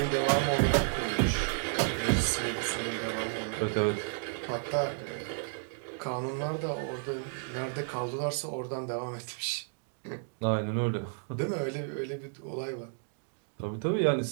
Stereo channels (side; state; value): left; silent; digital silence